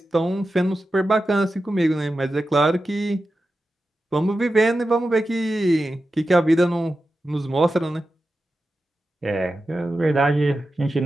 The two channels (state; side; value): normal; both; correlation 0.92